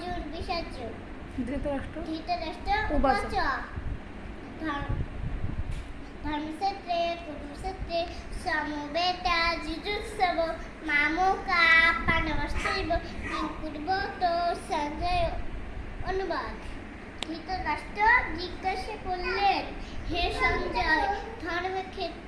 বিষাদ। ধৃতরাষ্ট্র উবাচ। ধর্মক্ষেত্রে কুরুক্ষেত্রে সমবেতা যুযুৎসব মামকা পাণ্ডবশ্চৈব কিং কুর্বত সঞ্জয়। অনুবাদ। ধৃতরাষ্ট্র জিজ্ঞাসা করলেন, হে সঞ্জয়,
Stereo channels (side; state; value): both; identical; correlation 1.00